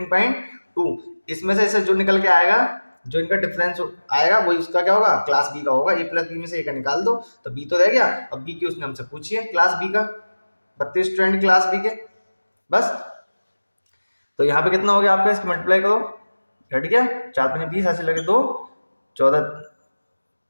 इसमें से इसे जो निकल के आएगा, जो इनका डिफरेंस आएगा वो इसका क्या होगा क्लास बी का होगा। ए प्लस बी में से ए का निकाल दो तो बी तो रह गया, अब बी की उसने हमसे पूछी है क्लास बी का, 32 स्टूडेंट क्लास बी के, बस। तो यहाँ पे कितना हो गया आपका, इसकी मल्टीप्लाई करो, घट गया 4 पंजे 20 ऐसे लगे 2, 14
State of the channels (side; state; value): both; inverted; correlation -1.00